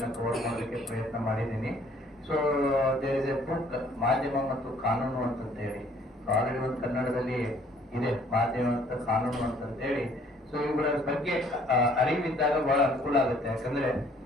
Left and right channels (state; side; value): normal; both; correlation 0.60